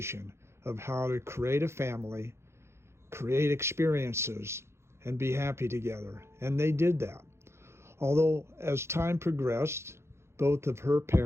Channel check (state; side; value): late; left; 0.13 ms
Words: of how to create a family, create experiences, and be happy together. And they did that. Although as time progressed, both of her